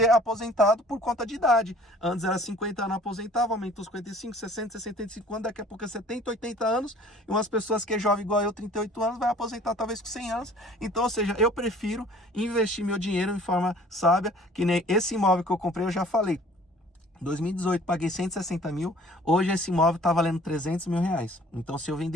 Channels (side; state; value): both; normal; correlation 0.52